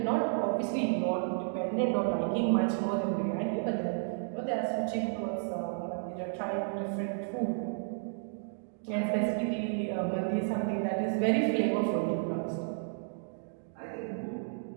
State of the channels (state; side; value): silent; left; digital silence